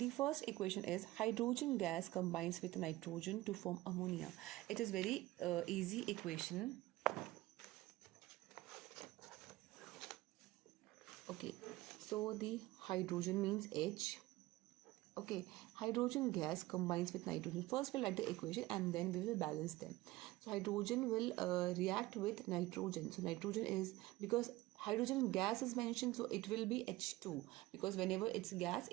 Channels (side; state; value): left; quieter; 18.5 dB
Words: first equation is hydrogen gas combines with nitrogen to form ammonia. It is very easy equation. Okay, so the hydrogen means H. Okay, hydrogen gas combines with nitrogen. First we'll write the equation and then we will balance them. So hydrogen will react with nitrogen. So nitrogen is, because hydrogen gas is mentioned, so it will be H2, because whenever it's gas,